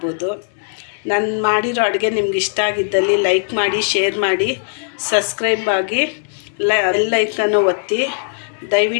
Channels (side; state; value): right; silent; 67 dB below the other